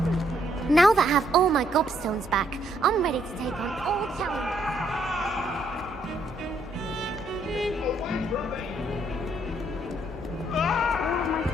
Now that I have all my gobstones back, I'm ready to take on all challenges.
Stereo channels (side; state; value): both; normal; correlation 0.71